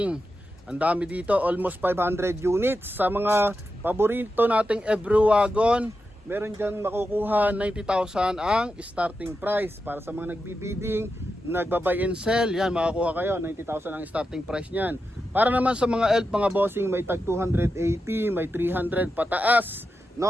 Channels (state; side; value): normal; both; correlation 0.89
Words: Ang dami dito, almost 500 units. Sa mga paborito nating every wagon, meron dyan makukuha 90,000 ang starting price. Para sa mga nagbibidding, nagbabuy and sell, yan makakuha kayo, 90,000 ang starting price nyan. Para naman sa mga ELF mga bossing, may tag 280, may 300 pataas,